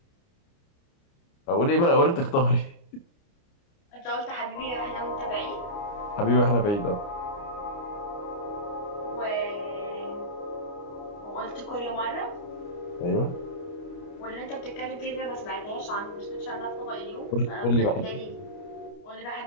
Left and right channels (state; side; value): late; right; 29 ms